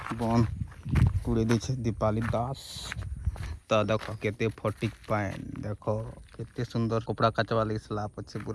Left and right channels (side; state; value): both; identical; correlation 1.00